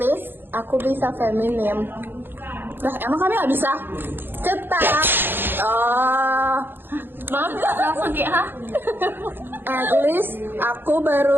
aku bisa feminim. Lah emang kami nggak bisa? Cetak. Oh. Langsung kayak hah? At least aku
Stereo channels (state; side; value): late; left; 0.10 ms